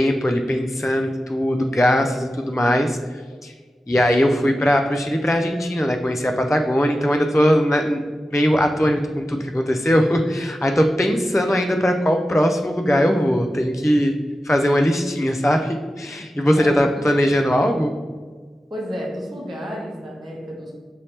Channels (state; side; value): normal; both; correlation 0.92